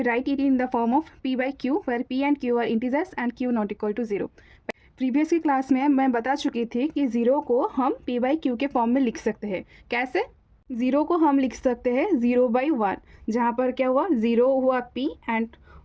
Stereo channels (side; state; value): both; identical; correlation 1.00